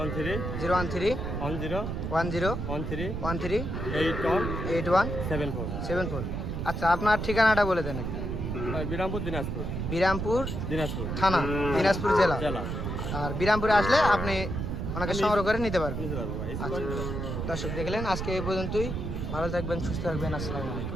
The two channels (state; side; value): noise; right; rumble, 3 dB below the sound